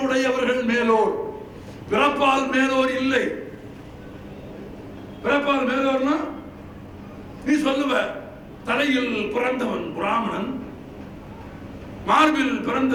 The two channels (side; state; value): both; identical; correlation 1.00